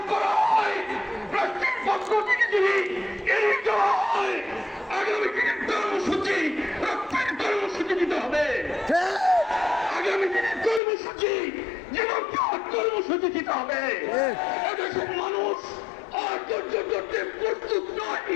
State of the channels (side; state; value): right; drops out; at 10.8 s